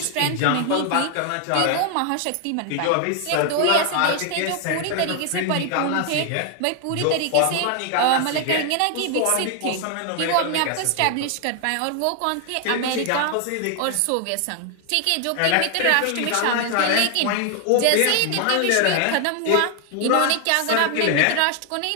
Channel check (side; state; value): both; different; correlation 0.00